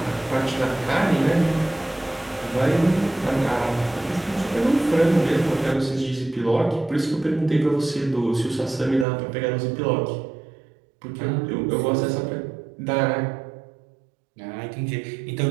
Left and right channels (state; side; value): drops out; left; at 9.1 s